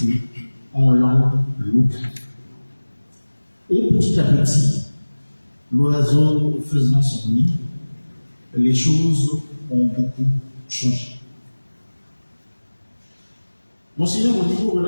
en langue locale. Et petit à petit, l'oiseau faisant son nid, les choses ont beaucoup changé. Monseigneur Modibo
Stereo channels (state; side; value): inverted; both; correlation -1.00